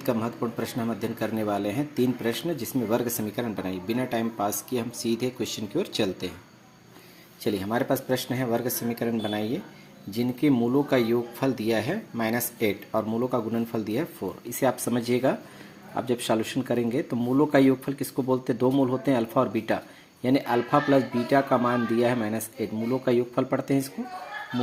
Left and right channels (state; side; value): identical; both; correlation 1.00